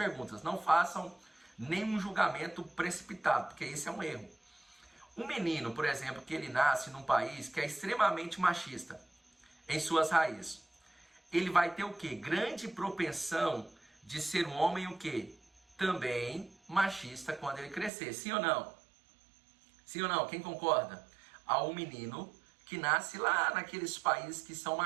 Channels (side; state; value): left; drops out; at 17.9 s